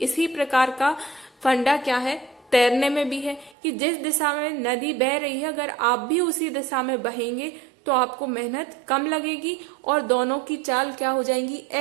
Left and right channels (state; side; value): drops out; left; at 3.6 s